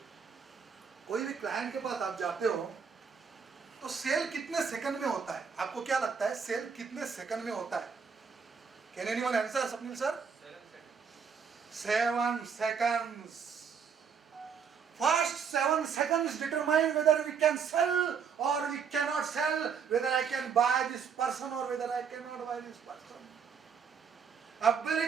कोई भी client के पास आप जाते हो तो सेल कितने सेकंड में होता है? आपको क्या लगता है सेल कितने सेकंड में होता है? Can anyone answer? Swapnil sir? 7 seconds. First 7 seconds determine whether we can sell or we cannot sell, whether I can buy this person or whether I cannot buy this person.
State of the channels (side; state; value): left; quieter; 6.5 dB